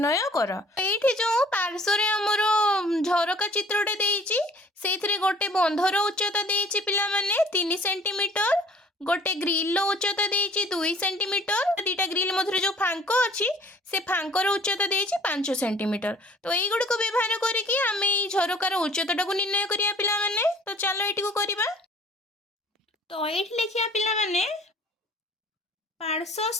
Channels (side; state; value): both; normal; correlation 0.53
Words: कर। एठी जो पार्श्व रे हमर झरका चित्रटे देइछि सेथिरे गोटे बंधर उच्चता देइछि पिला माने 3 सेंटीमीटर गोटे ग्रिल उच्चता देइछि 2 सेंटीमीटर दीटा ग्रिल मध्य जो फांक अछि से फांकर उच्चता देइछि 5 सेंटीमीटर। तो एई गुड को व्यवहार करिकि आमे एई झरकार उच्चताटा को निर्णय करिया पिला माने। तो चलो एटी को करिबा। तो एठी लिखिया पिला माने